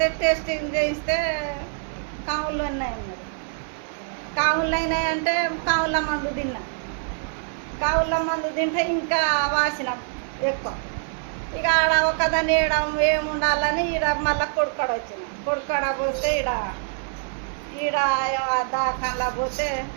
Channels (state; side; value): silent; left; digital silence